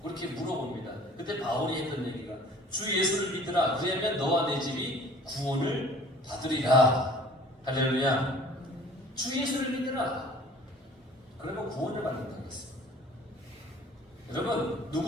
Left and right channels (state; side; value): normal; both; correlation 0.49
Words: 그렇게 물어봅니다. 그때 바울이 했던 얘기가 주 예수를 믿으라. 그러면 너와 내 집이 구원을 받으리라. 할렐루야. 주 예수를 믿으라. 그러면 구원을 받는다고 했습니다. 여러분